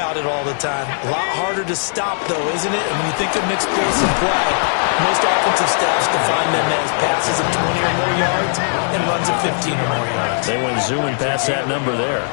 it all the time. A lot harder to stop, though, isn't it? And when you think of an explosive play, most offensive staffs define them as passes of 20 or more yards and runs of 15 or more yards. They went zooming past that number there.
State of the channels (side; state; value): right; silent; digital silence